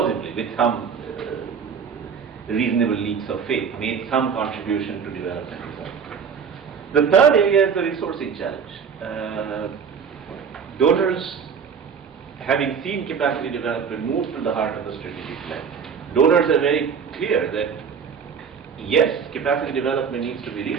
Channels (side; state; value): left; quieter; 6.6 dB